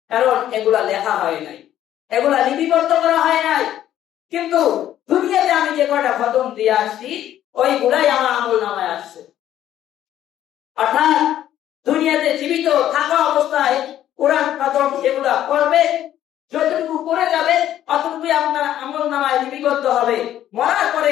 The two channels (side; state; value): right; quieter; 11.8 dB